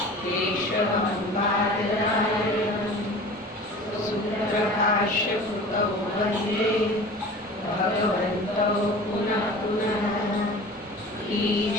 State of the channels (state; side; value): normal; both; correlation 0.39